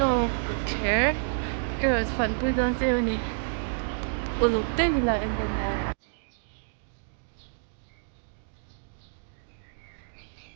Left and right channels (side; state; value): left; silent; digital silence